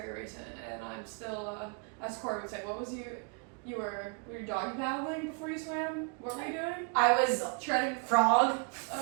recent and I'm still, as Corey would say, what was you were doggy paddling before you swam? What were you doing? I was Treading frog.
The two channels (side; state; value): left; quieter; 35.0 dB